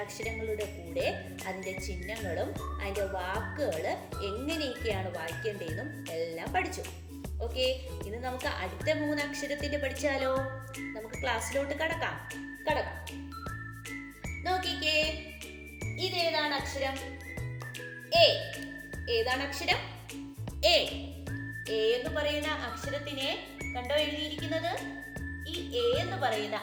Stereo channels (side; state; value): both; identical; correlation 1.00